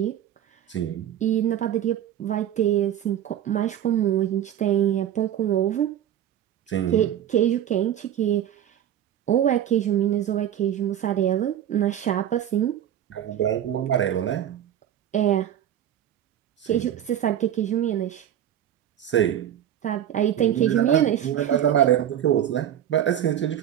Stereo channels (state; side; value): quieter; left; 10.6 dB